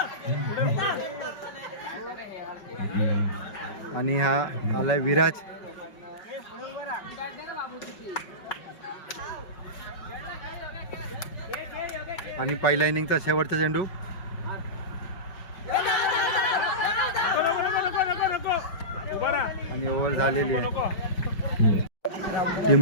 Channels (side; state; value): right; late; 5.3 ms